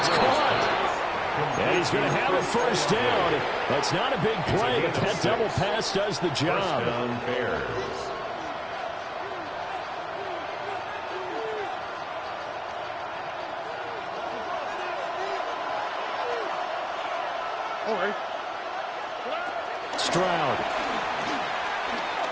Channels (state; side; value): identical; both; correlation 1.00